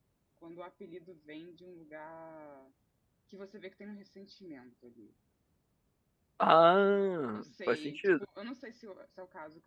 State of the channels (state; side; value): identical; both; correlation 1.00